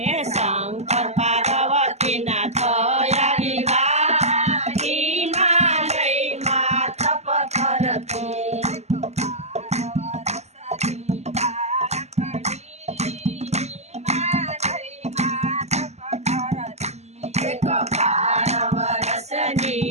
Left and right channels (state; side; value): late; left; 0.32 ms